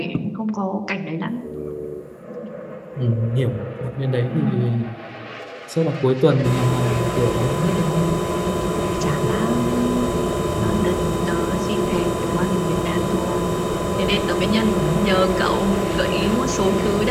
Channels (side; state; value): both; identical; correlation 1.00